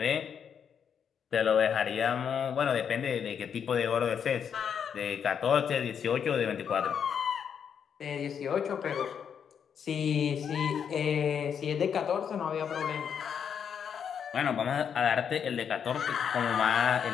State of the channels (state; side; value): quieter; right; 7.6 dB